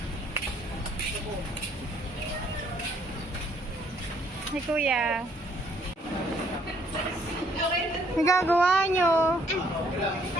Hey, kuya. Nagagawa nyo?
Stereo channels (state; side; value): normal; both; correlation 0.65